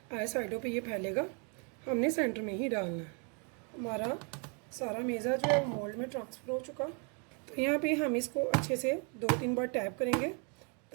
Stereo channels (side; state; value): left; quieter; 36.9 dB